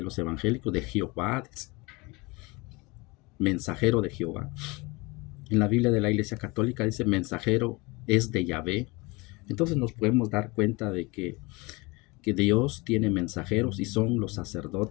los evangélicos, de Jehová, mensajero de Jehová. En la Biblia de la Iglesia Católica dice mensajero es de Yahvé. Entonces nos podemos dar cuenta de que Dios tiene mensajeros y son los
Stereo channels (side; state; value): right; quieter; 25.4 dB